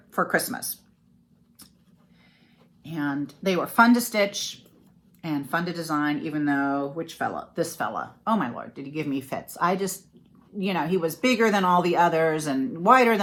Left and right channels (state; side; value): identical; both; correlation 1.00